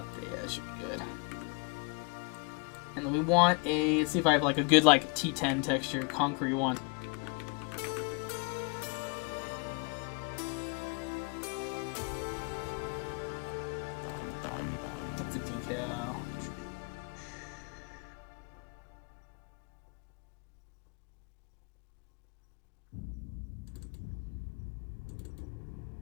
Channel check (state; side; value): quieter; right; 33.8 dB